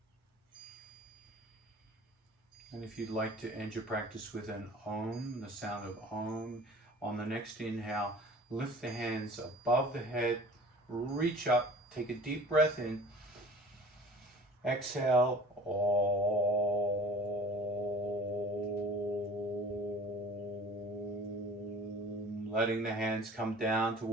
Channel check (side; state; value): both; normal; correlation 0.44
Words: And if you'd like to end your practice with an Om, the sound of Om, on the next inhale, lift the hands above the head, reach up, take a deep breath in, exhale, Om, letting the hands come down